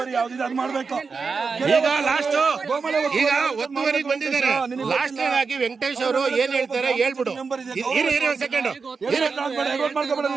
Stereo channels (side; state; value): left; quieter; 4.9 dB